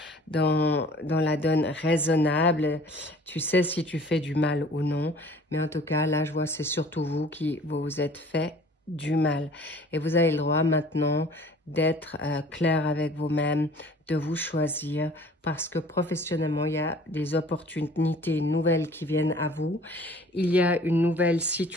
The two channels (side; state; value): both; normal; correlation 0.50